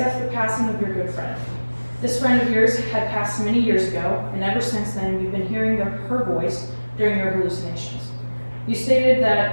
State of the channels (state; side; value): inverted; both; correlation -1.00